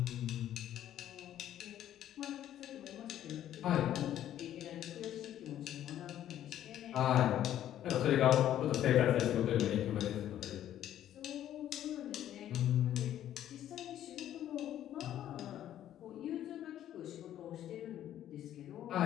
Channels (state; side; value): quieter; right; 11.6 dB